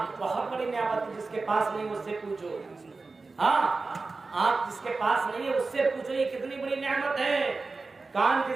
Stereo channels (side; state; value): left; quieter; 3.9 dB